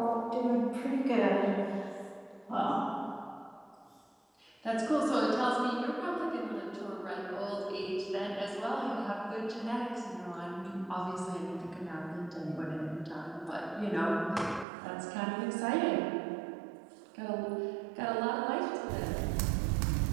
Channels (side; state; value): left; drops out; at 14.7 s